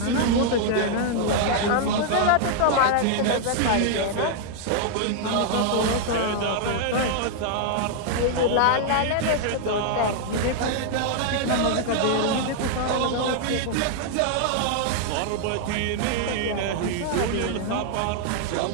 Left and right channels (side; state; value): both; different; correlation -0.01